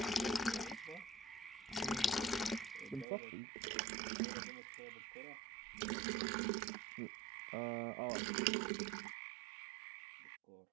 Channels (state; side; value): drops out; left; at 3.1 s